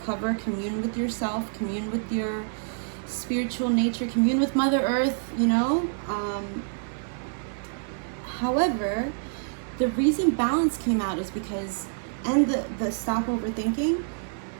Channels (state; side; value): silent; left; digital silence